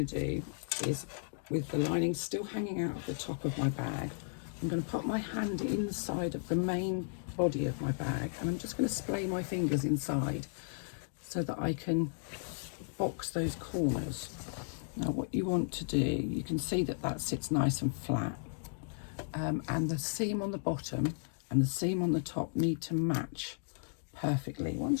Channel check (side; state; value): right; silent; digital silence